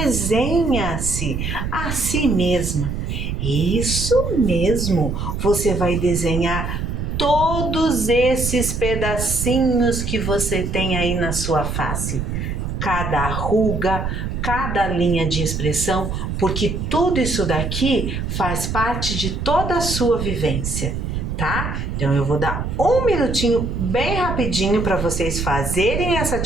a si mesma. Isso mesmo, você vai desenhar todos esses pedacinhos que você tem aí na sua face. Cada ruga, cada linha de expressão, porque tudo isso daqui faz parte de toda a sua vivência, tá? Então eu vou dar um minutinho bem rapidinho para vocês fazerem essa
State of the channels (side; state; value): right; noise; rumble, 3 dB below the sound